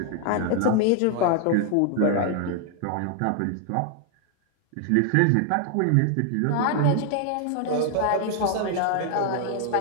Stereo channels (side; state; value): both; different; correlation 0.00